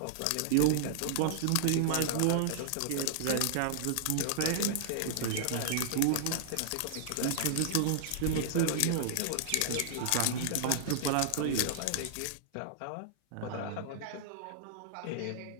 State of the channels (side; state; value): both; different; correlation -0.01